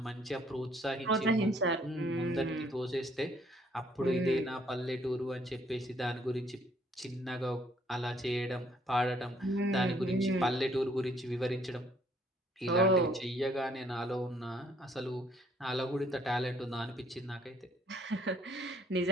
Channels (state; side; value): normal; both; correlation 0.64